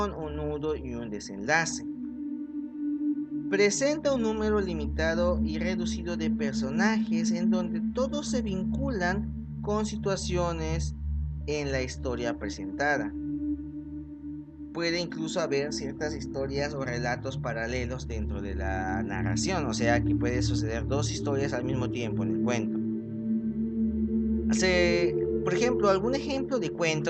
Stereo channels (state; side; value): identical; both; correlation 1.00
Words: un nudo y un desenlace. Presenta un número limitado y reducido de personajes en donde todos se vinculan con situaciones en la historia presentada. Puede incluso haber ciertas historias o relatos paralelos dentro de la narración, o sea que puede suceder dos historias al mismo tiempo en el cuento. Por ejemplo, algún ejemplo de